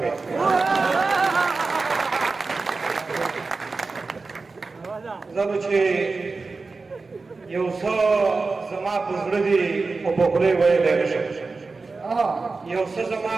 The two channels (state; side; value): quieter; left; 4.0 dB